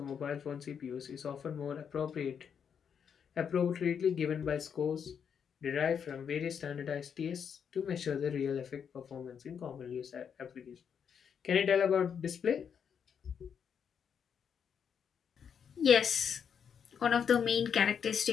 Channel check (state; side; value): quieter; right; 7.4 dB